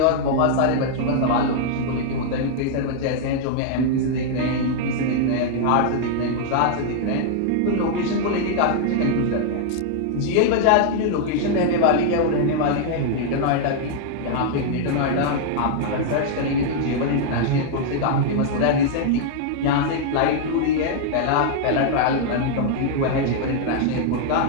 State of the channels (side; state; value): both; different; correlation -0.01